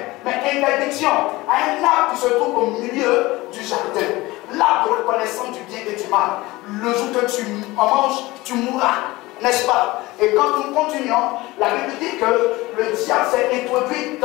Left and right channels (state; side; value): quieter; right; 20.1 dB